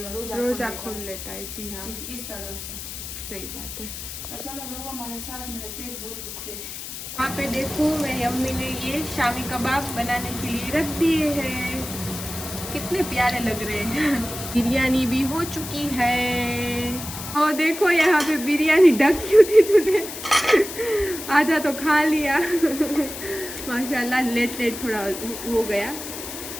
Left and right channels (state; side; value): noise; left; hiss, 9 dB below the sound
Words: रोजा खोल लेता है। जी हाँ जी इस तरह से। सही बात है। तो चलो लोगों हमारे साथ, मेरे पेट बहुत दुख रहे हैं। वहाँ पे देखो मेरी अम्मी ने ये शामी कबाब बनाने के लिए रख दिए हैं, कितने प्यारे लग रहे हैं। बिरयानी भी हो चुकी है और देखो यहाँ पे बिरयानी ढक क्यों थी तूने आधा तो खा लिया। माशाल्लाह लेट थोड़ा हो गया